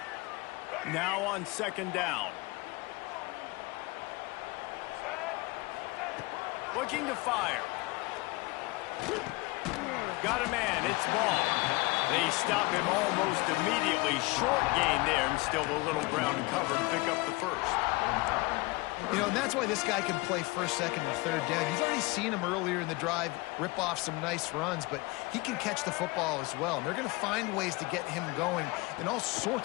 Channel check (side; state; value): right; quieter; 23.7 dB